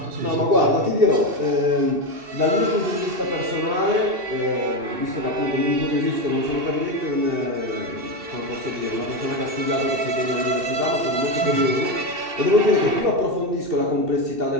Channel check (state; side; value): late; left; 2.7 ms